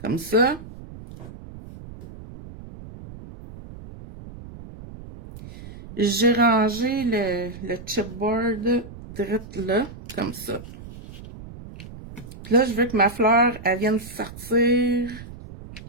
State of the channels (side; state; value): right; noise; rumble, 15 dB below the sound